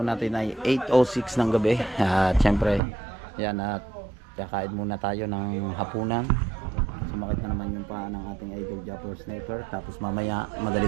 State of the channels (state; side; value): drops out; left; at 2.8 s